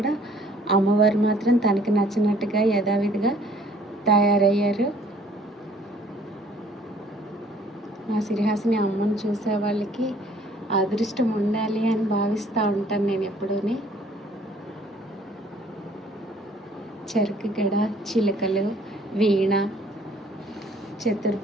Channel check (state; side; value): normal; both; correlation 0.58